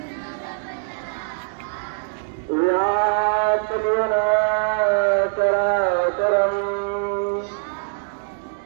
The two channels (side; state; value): left; silent; digital silence